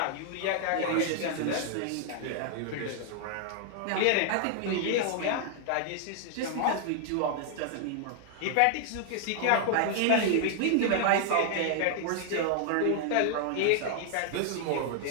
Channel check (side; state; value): both; different; correlation 0.00